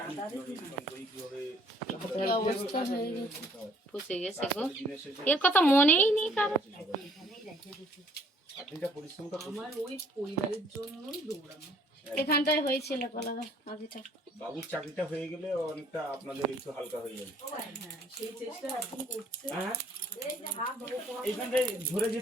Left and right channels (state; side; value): normal; both; correlation 0.60